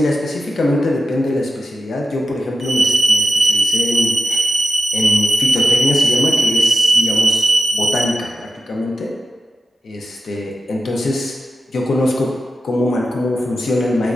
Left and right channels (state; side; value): normal; both; correlation 0.92